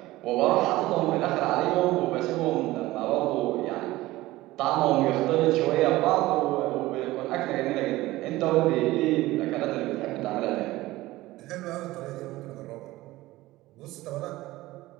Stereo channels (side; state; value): left; quieter; 17.9 dB